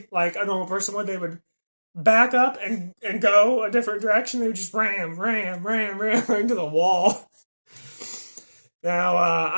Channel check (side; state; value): both; inverted; correlation -1.00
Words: like a normal person would. They would back up and go a different direction. They would just ram into the wall. Now,